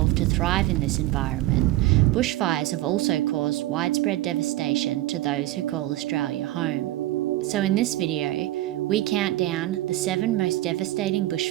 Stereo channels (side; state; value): left; quieter; 16.2 dB